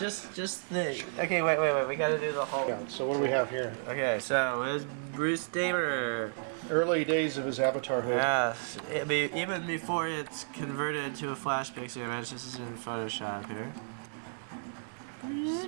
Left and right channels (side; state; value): left; silent; digital silence